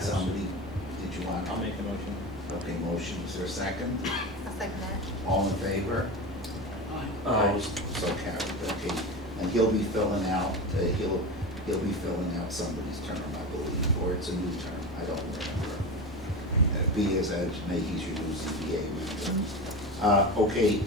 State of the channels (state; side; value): normal; both; correlation 0.25